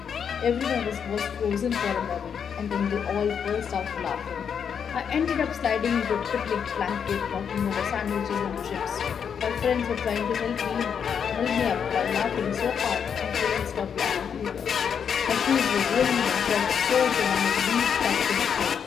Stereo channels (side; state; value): right; quieter; 7.4 dB